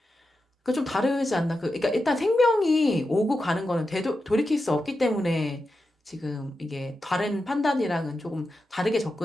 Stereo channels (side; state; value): both; normal; correlation 0.90